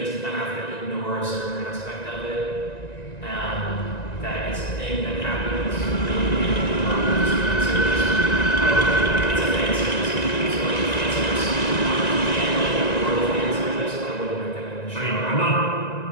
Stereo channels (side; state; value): right; late; 1.9 ms